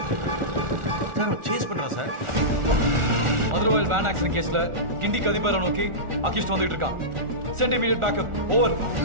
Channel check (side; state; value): left; late; 1.4 ms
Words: சேஸ் பண்றா சார். மதுரவாயல் வேன் ஆக்சிடென்ட் கேஸ்ல கிண்டி கதிபரை நோக்கி அகிஷ்ட் வந்துட்டு இருக்கான். Send immediate backup. ஓவர்.